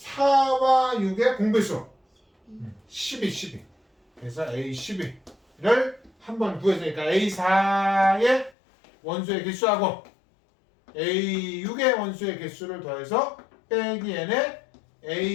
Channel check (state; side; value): drops out; right; at 8.5 s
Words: 6의 공배수. 12. 그래서 A12를 한번 구했으니까 A4의 원소의 개수하고 A6의 원소의 개수를 더해서 빼기 n의